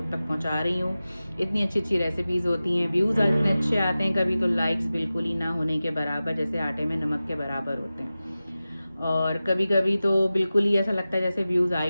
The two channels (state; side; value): inverted; both; correlation -0.95